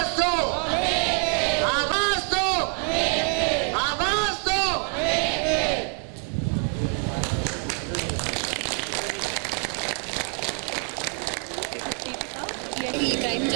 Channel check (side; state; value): left; quieter; 36.7 dB